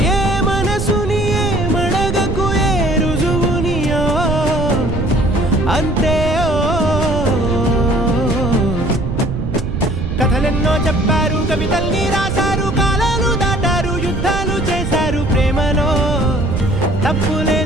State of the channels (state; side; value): noise; right; rumble, 3 dB below the sound